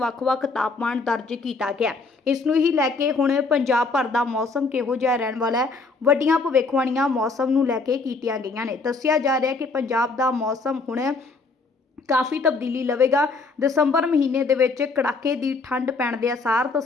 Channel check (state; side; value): quieter; right; 3.9 dB